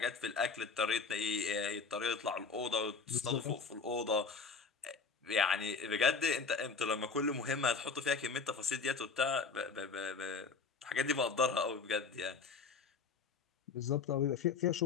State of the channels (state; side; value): quieter; right; 4.9 dB